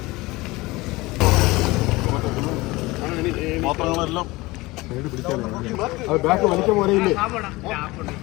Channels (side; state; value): right; quieter; 21.3 dB